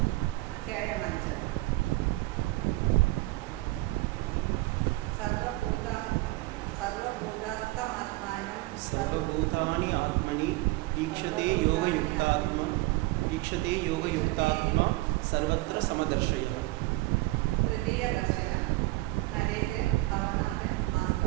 अध्यायम् 5 सर्वभूतानि आत्मनि ईक्षते योगयुक्तात्मा सर्वत्र समदर्शयः। तृतीय दर्शനം നരേന്ദ്രൻ ഭവനാഥൻ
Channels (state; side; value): quieter; left; 21.0 dB